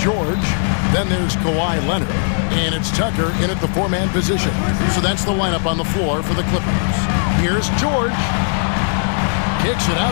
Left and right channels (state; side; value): silent; right; 67 dB below the other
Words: Then there's Kawhi Leonard. And it's Tucker in at the 4-man position. So that's the lineup on the floor for the Clippers. Here's George. Kicks it